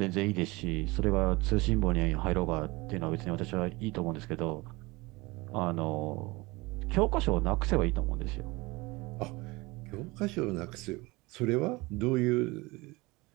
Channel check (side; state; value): left; quieter; 23.2 dB